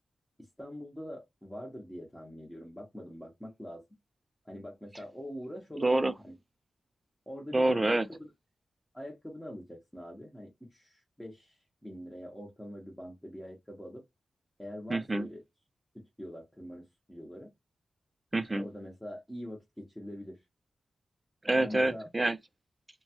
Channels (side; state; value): both; normal; correlation 0.98